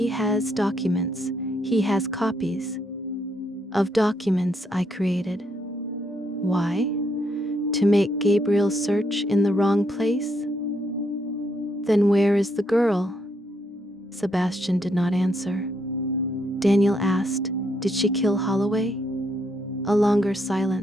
has documents. He has copies of documents I created. Why? To make Gabriel search in the wrong place? Then where is the girl? Sebastian did not answer. Daniel asked, did she kill Holloway? A longer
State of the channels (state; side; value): normal; both; correlation 0.75